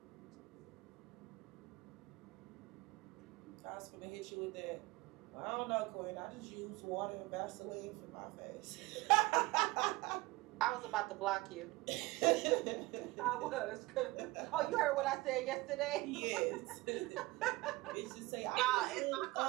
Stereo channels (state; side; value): quieter; left; 21.1 dB